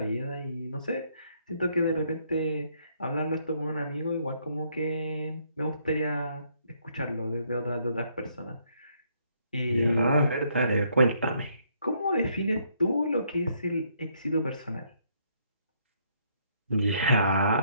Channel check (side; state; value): both; inverted; correlation -0.70